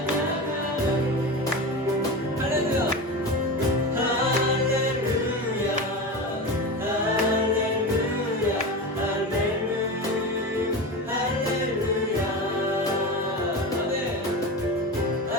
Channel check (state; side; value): normal; both; correlation 0.24